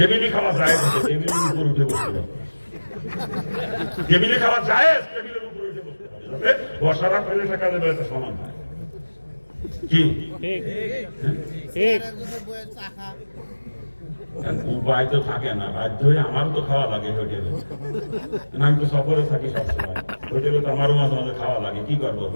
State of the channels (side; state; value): both; inverted; correlation -1.00